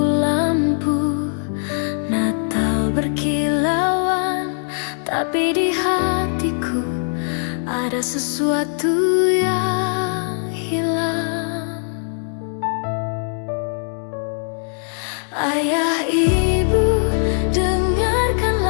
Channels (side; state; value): right; silent; 64 dB below the other